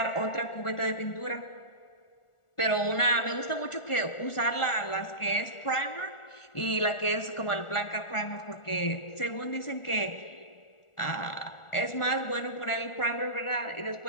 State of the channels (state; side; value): late; right; 1.4 ms